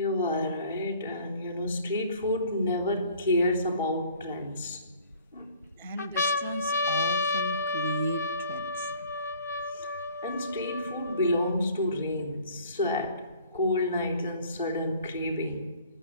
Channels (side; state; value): both; inverted; correlation -0.53